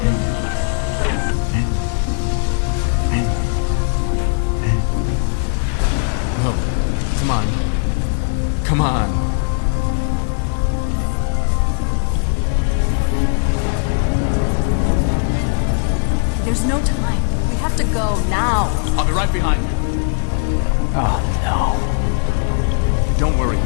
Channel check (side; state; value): right; silent; digital silence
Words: end it. No. Come on. Come on. There's no time. We have to go now. I'll be right behind you. Oh, no. Don't worry,